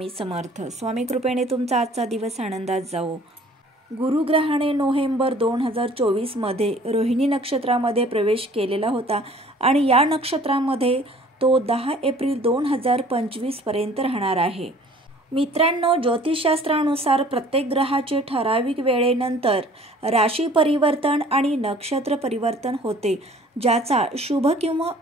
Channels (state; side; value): normal; both; correlation 0.52